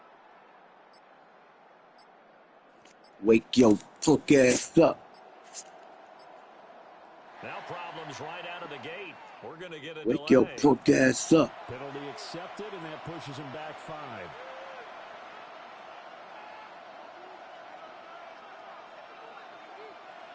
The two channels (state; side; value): identical; both; correlation 1.00